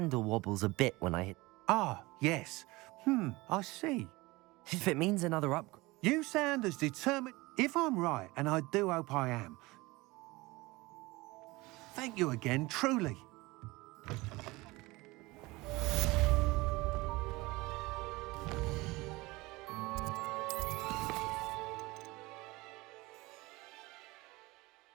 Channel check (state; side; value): quieter; left; 21.8 dB